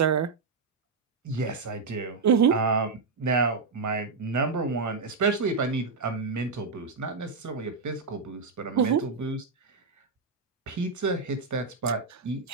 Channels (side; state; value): left; quieter; 4.6 dB